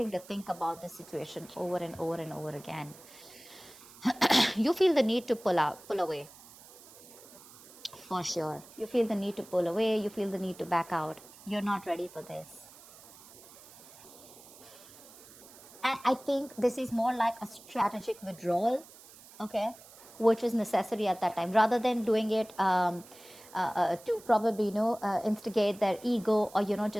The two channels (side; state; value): right; noise; hiss, 21 dB below the sound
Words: to think about the situation over and over and over again. You feel the need to pull away. For sure. You feel the need to pull away. You feel the need to back out. You're not ready for this. And I think this is more like a strategic withdrawal, okay, which is necessary at that time, rather than doing it to probably, instigate their ego, or,